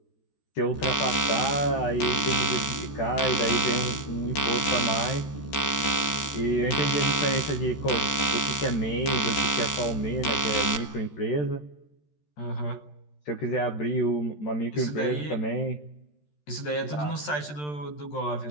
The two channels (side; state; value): right; late; 13 ms